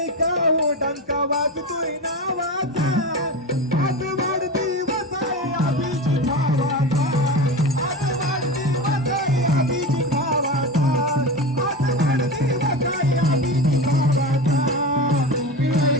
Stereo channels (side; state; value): both; normal; correlation 0.25